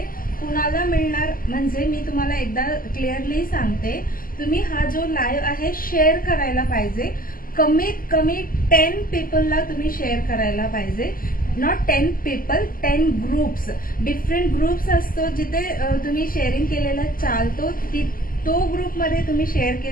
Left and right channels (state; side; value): late; right; 0.41 ms